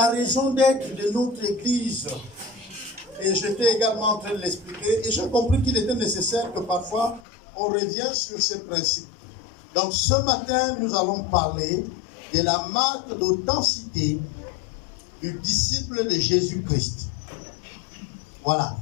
raison d'être de notre église, et j'étais également en train de l'expliquer, et j'ai compris qu'il était nécessaire que parfois on revienne sur ces principes. Donc ce matin, nous allons parler de la marque d'authenticité du disciple de Jésus-Christ. Voilà.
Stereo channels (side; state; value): right; drops out; at 7.2 s